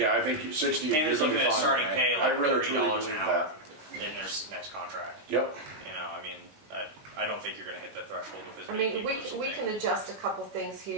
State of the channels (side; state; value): left; late; 19 ms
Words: at, I think 60, you're Hamden's gonna looking be at fine, starting man. pay I like really $30 truly an believe hour that. in their next contract. Yep, You know, I mean, I don't think you're going to hit that threshold with as I many mean, people as you we think. can adjust a couple things